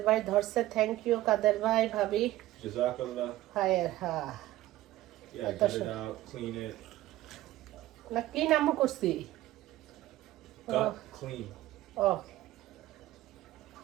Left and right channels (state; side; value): quieter; left; 15.7 dB